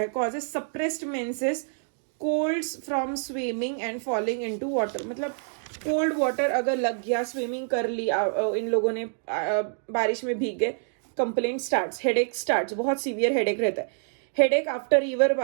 Causes suppressed menses colds from swimming and falling into water, मतलब कोल्ड वाटर अगर लग गया, स्विमिंग कर ली इन लोगों ने, बारिश में भीग गए, कंप्लेंट स्टार्ट्स, हेडेक स्टार्ट्स, बहुत सीवियर हेडेक रहता है। Headache after river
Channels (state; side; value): silent; left; digital silence